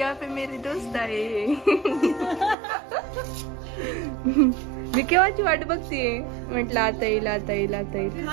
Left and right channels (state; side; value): drops out; left; at 2.6 s